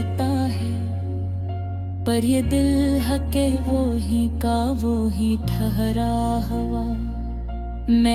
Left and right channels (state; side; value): identical; both; correlation 1.00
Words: है, पर ये दिल हके वो ही का वो ही ठहरा हुआ।